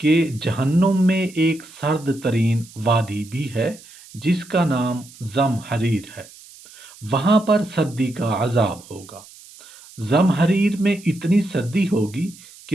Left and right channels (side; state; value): right; noise; hiss, 21 dB below the sound